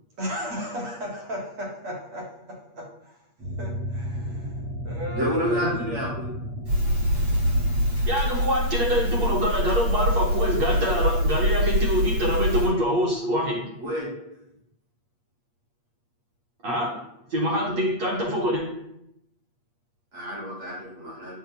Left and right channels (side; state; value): left; late; 8.5 ms